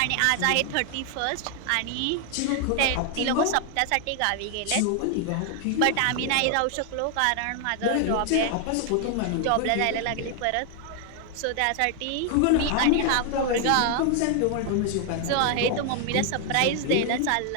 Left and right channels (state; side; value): different; both; correlation 0.00